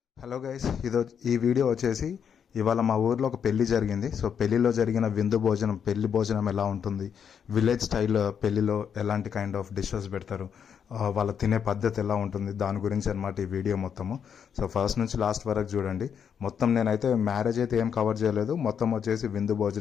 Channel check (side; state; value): right; quieter; 7.6 dB